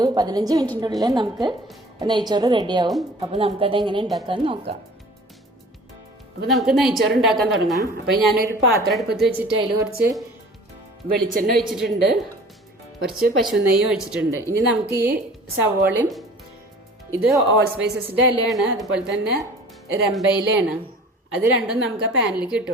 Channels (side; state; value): both; normal; correlation 0.45